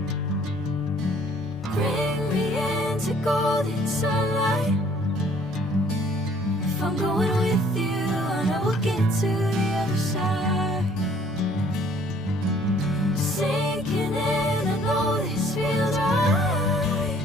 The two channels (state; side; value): normal; both; correlation 0.58